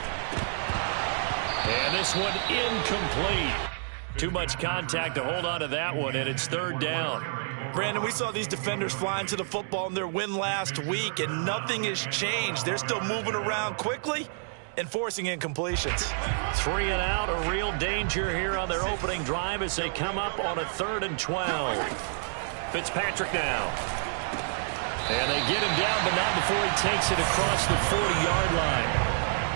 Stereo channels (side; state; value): left; silent; digital silence